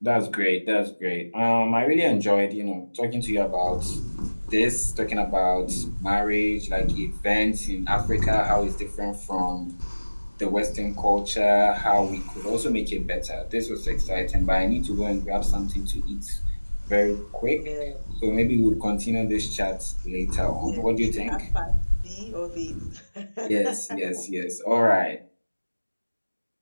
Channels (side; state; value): both; inverted; correlation -1.00